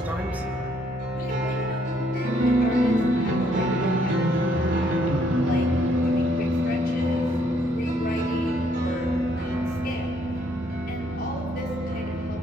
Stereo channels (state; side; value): normal; both; correlation 0.68